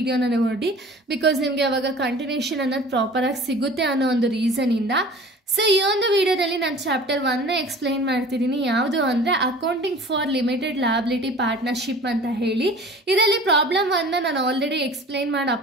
ನೋಡಿ, ಬಿಕಾಸ್ ನಿಮಗೆ ಅವಾಗ ಕಂಟಿನ್ಯೂಷನ್ ಅನ್ನೋದು ಪ್ರಾಪರಾಗಿ ಸಿಗುತ್ತೆ ಅನ್ನೋ ಒಂದು ರೀಸನಿಂದ. ಸೊ ಈ ಒಂದು ವಿಡಿಯೋದಲ್ಲಿ ನಾನು ಚಾಪ್ಟರ್ 1ನ ಎಕ್ಸ್ಪ್ಲೈನ್ ಮಾಡ್ತಿದ್ದೀನಿ. ಯಾವುದು ಅಂದರೆ accounting for limited liability partnership ಅಂತ ಹೇಳಿ. ಇದರಲ್ಲಿ ಪ್ರಾಬ್ಲಮ್ 1ನ ನಾನು ಆಲ್ರೆಡಿ ಎಕ್ಸ್ಪ್ಲೈನ್ ಮಾಡಿ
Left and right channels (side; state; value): both; normal; correlation 0.44